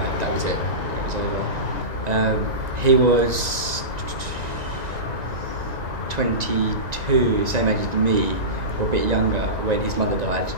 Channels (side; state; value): left; late; 1.9 ms